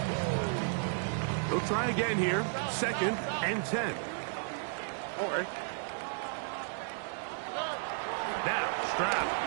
They'll try again here. 2nd and 10. All right. Now Stroud.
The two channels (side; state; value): left; silent; 55 dB below the other